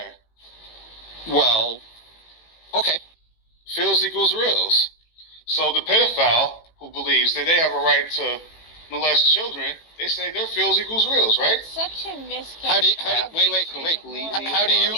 Well, okay. Feels equals reals. So the pedophile who believes that they have a right to molest children, they say their feels equals reals, right? Such a misconception. How do you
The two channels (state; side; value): late; right; 18 ms